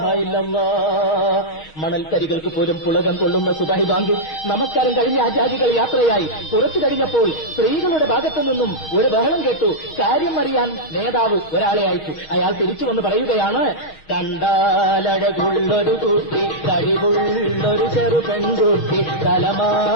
ഇല്ലല്ലാഹ്. മണൽത്തരികൾക്ക് പോലും പുളകം കൊള്ളുന്ന സുബഹി ബാങ്ക്. നമസ്കാരം കഴിഞ്ഞ ആചാരികൾ യാത്രയായി. കുറച്ചു കഴിഞ്ഞപ്പോൾ സ്ത്രീകളുടെ ഭാഗത്തു നിന്നും ഒരു ബഹളം കേട്ടു. കാര്യം അറിയാൻ നേതാവ് ഒരാളെ അയച്ചു. അയാൾ തിരിച്ചു വന്ന് പറയുകയാണ്, കണ്ടാലഴകുള്ളൊരു കുട്ടി, കഴിവുള്ളൊരു ചെറു പെൺകുട്ടി,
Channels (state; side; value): late; right; 6.4 ms